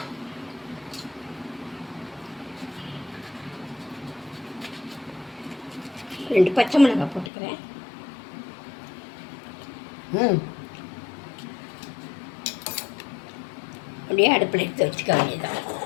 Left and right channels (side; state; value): right; drops out; at 7.3 s